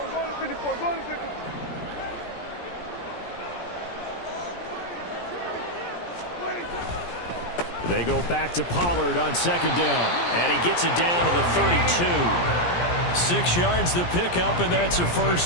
They go back to Pollard on 2nd down, and he gets it down to the 32. 6 yards the pickup, and that's a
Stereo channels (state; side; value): late; right; 17 ms